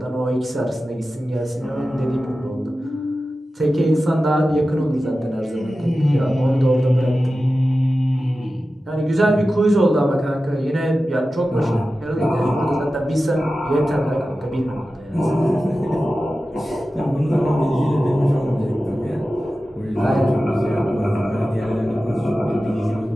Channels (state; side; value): normal; both; correlation 0.94